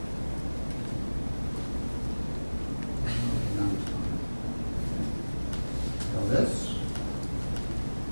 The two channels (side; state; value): both; inverted; correlation -1.00